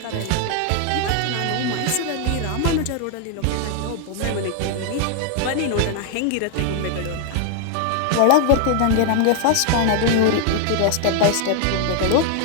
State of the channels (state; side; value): different; both; correlation 0.00